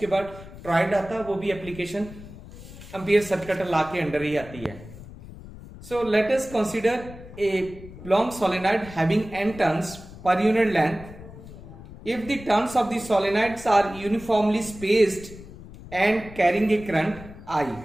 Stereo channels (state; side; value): noise; left; rumble, 16 dB below the sound